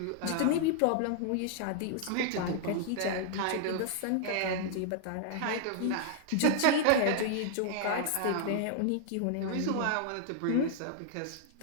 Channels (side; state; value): both; different; correlation -0.01